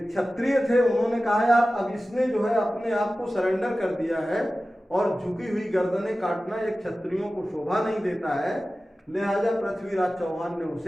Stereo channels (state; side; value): normal; both; correlation 0.95